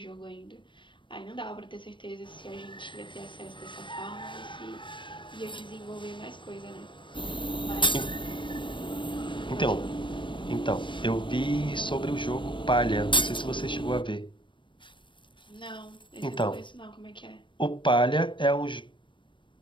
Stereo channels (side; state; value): right; late; 0.24 ms